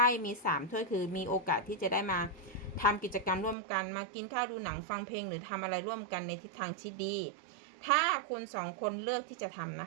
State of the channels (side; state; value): left; drops out; at 3.6 s